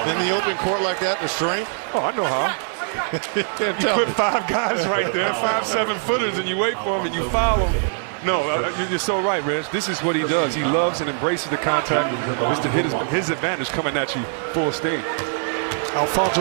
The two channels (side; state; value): left; silent; digital silence